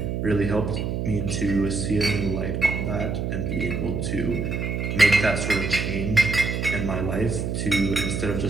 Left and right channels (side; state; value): right; noise; hum, 2 dB below the sound